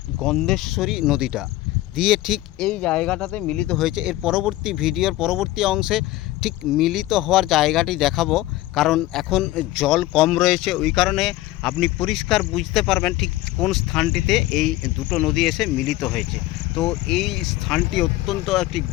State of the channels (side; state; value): right; quieter; 16.6 dB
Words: গন্ধেশ্বরী নদীটা দিয়ে ঠিক এই জায়গাটাতে মিলিত হয়েছে। এর পরবর্তী ভিডিওর পরবর্তী অংশে ঠিক মিলিত হওয়ার জায়গাটি দেখাবো, কারণ এখন জল কম রয়েছে, ওই কারণে আপনি পরিষ্কার বুঝতে পারবেন ঠিক কোন স্থানটিতে এই দুটো নদী এসে মিলিত হয়েছে। তো এই স্থানটি অত্যন্ত একটি